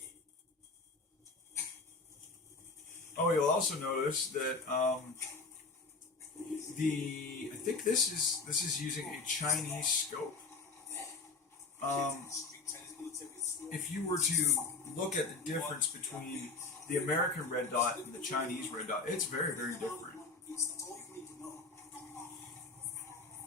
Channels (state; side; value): quieter; right; 4.0 dB